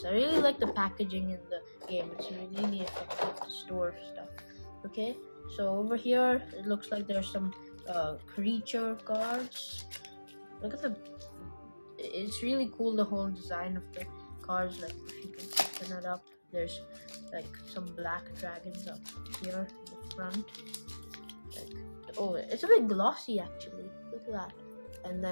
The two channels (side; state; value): both; inverted; correlation -1.00